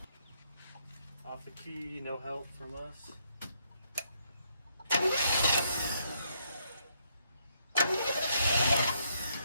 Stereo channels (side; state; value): both; inverted; correlation -0.73